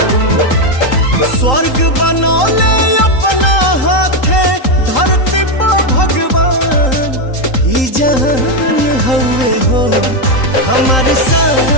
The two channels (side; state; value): right; late; 3.8 ms